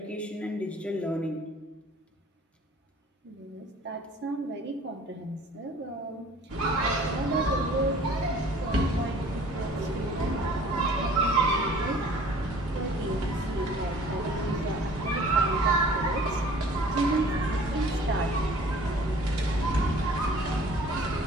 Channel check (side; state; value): both; normal; correlation 0.51